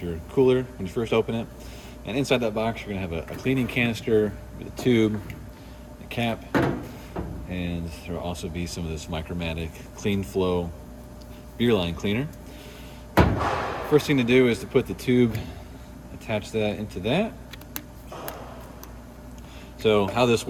your cooler, when you first open it. And inside that box, you're gonna have a cleaning canister with a tube, a cap, and there will also be some of this Micromatic Clean Flow beer line cleaner. First thing to do is to put the tube, attach that into that. So how this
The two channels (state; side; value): identical; both; correlation 1.00